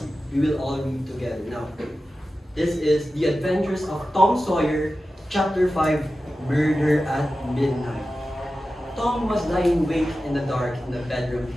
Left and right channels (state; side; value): normal; both; correlation 0.93